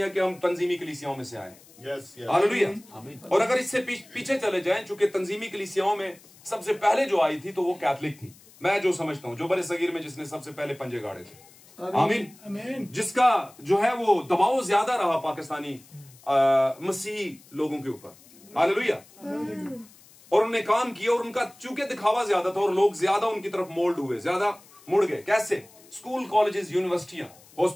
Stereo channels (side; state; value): left; noise; hiss, 25 dB below the sound